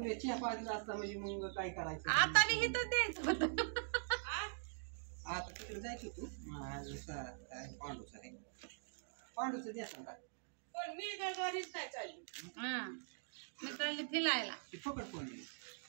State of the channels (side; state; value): left; silent; digital silence